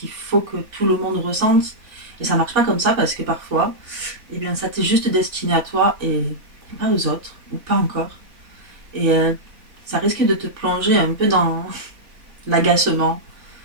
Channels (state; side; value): late; left; 3.5 ms